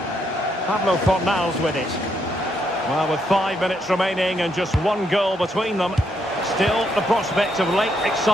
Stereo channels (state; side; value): normal; both; correlation 0.76